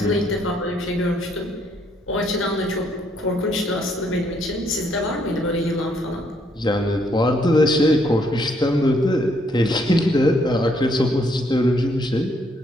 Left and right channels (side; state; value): both; normal; correlation 0.70